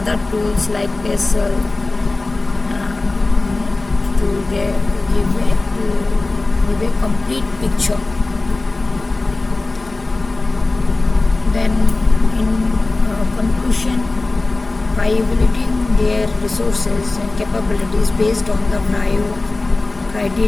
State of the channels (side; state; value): right; quieter; 3.2 dB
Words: tools like PESL to give a complete picture. Then in conclusion, by evaluating their resources and capabilities based on the vrio